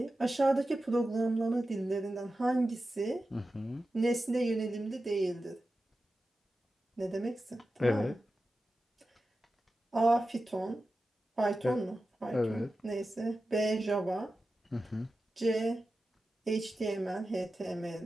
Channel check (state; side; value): normal; both; correlation 0.93